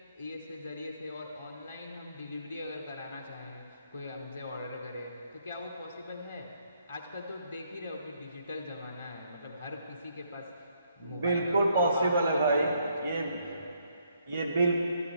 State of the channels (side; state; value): both; inverted; correlation -0.72